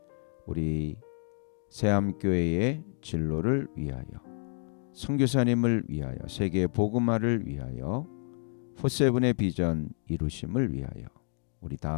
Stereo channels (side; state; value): right; silent; 58 dB below the other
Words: 우리 새암교회의 진로를 위하여 선교사님을 위하여 세계 복음화를 위하여 포세븐의 비전 이루심을 위하여 우리